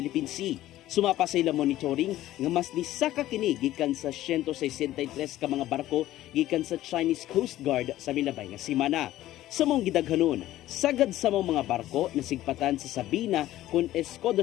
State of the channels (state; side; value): quieter; right; 14.6 dB